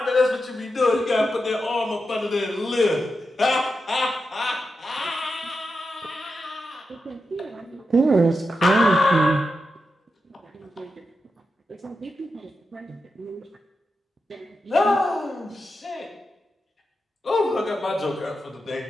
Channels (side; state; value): both; normal; correlation 0.88